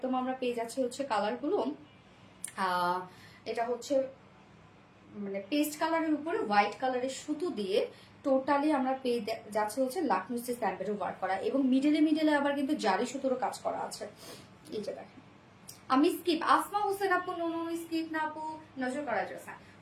আমরা পেয়ে যাচ্ছি হচ্ছে কালারগুলো, এটা হচ্ছে মানে পেস্ট কালারের উপরে হোয়াইট কালারের সুতো দিয়ে টোটালি আমরা পেয়ে যাচ্ছে হচ্ছে লাকনো স্টেজ এমব্রয়ডারি ওয়ার্ক করা এবং মিডলে মিডলে আবার কিন্তু জারি সুতোরও কাজ করা আছে। এই যে দেখেন, আমি স্কিপ আসমা হোসেন আপু, নুনু স্কিপ না আপু, নজর করা যাচ্ছে।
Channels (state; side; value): identical; both; correlation 1.00